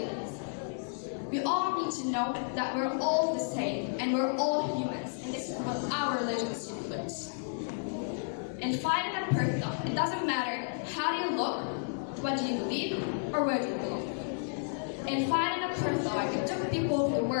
We all need to know that we're all the same and we're all humans, and this is what our religion stipulates. And fighting a person, it doesn't matter how do you look, what do you believe, or where do you belong. In fighting a apartheid, it took people of the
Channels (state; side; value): silent; right; digital silence